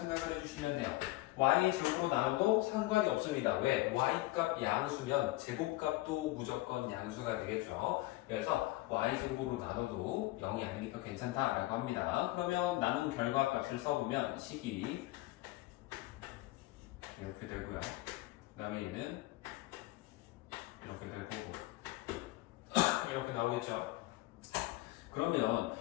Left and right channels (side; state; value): right; quieter; 19.0 dB